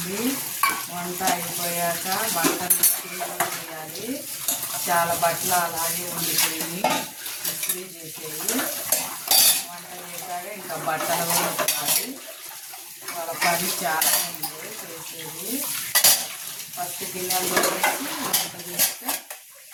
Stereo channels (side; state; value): both; identical; correlation 1.00